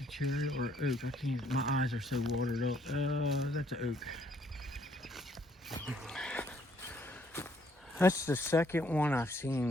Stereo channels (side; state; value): both; normal; correlation 0.66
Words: cherry or oak. I can't, my eyes are so watered up. That's an oak. That's the second one I've